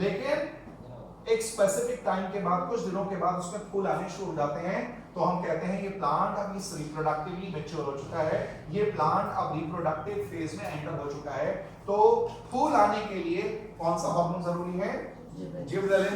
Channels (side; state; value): both; identical; correlation 1.00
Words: एक स्पेसिफिक टाइम के बाद, कुछ दिनों के बाद उसमें फूल आने शुरू हो जाते हैं, तो हम कहते हैं ये प्लांट अब इस रिप्रोडक्टिवली मैच्योर हो चुका है, ये प्लांट अब रिप्रोडक्टिव फेज में एंटर हो चुका है। तो फूल आने के लिए कौन सा हार्मोन जरूरी है?